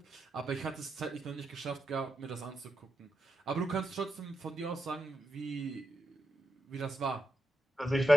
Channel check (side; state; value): both; normal; correlation 0.86